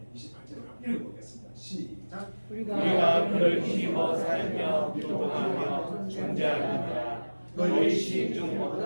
28절을 읽어보겠습니다. 시작. 우리가 그를 힘입어 살며 기도하며 존재하느니라. 너희 시인 중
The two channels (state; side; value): inverted; both; correlation -1.00